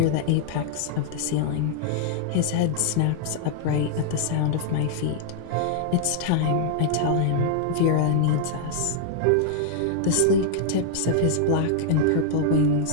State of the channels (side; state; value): both; different; correlation -0.01